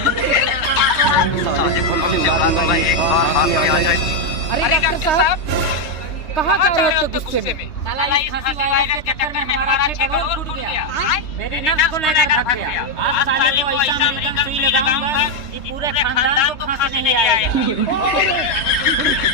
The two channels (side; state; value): right; late; 3.2 ms